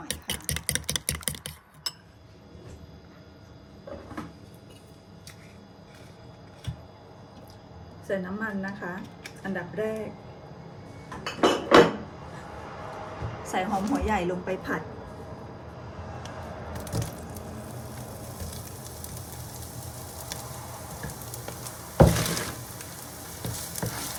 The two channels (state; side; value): identical; both; correlation 1.00